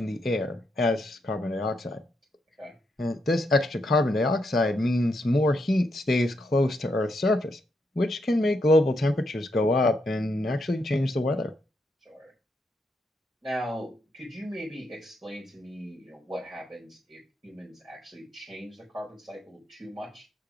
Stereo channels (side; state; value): both; normal; correlation 0.80